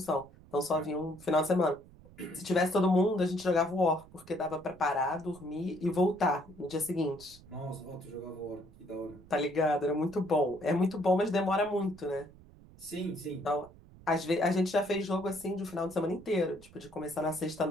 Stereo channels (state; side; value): noise; right; rumble, 22 dB below the sound